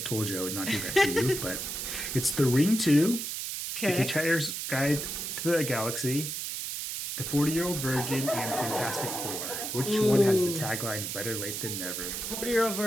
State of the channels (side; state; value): right; noise; hiss, 4 dB below the sound